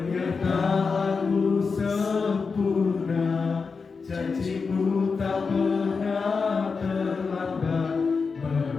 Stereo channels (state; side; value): quieter; right; 4.9 dB